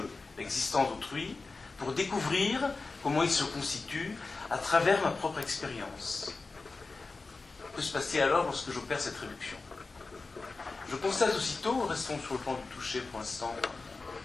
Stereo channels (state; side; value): quieter; right; 3.8 dB